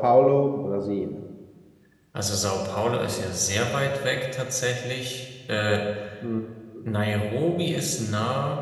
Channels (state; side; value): identical; both; correlation 1.00